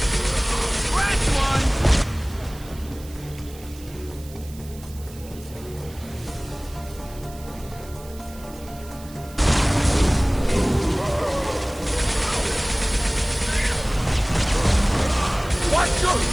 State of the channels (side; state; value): right; noise; hiss, 20 dB below the sound